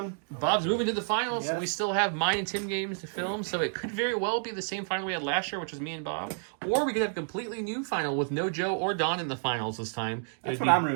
Bob's moving to the finals, Yes. and we still have mine and Tim games to film, so it could very well be the same final we had last year, which was me and Bob. Or we could have a completely new final with no Joe or Don in the finals this time. That's what I'm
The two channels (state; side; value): silent; left; digital silence